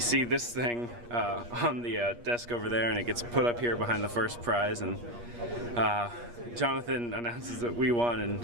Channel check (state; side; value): late; left; 8.4 ms